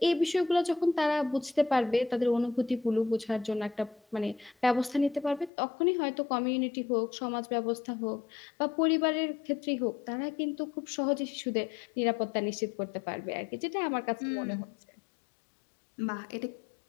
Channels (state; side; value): drops out; right; at 5.5 s